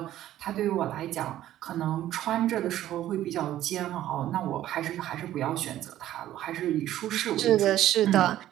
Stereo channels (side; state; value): left; quieter; 13.1 dB